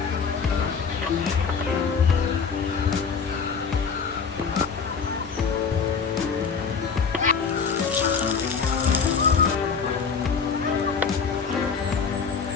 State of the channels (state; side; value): quieter; right; 5.7 dB